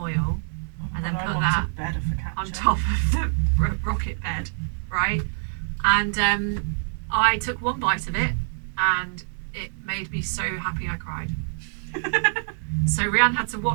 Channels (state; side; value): silent; left; digital silence